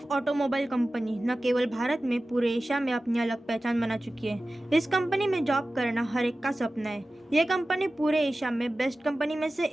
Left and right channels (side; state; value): both; normal; correlation 0.96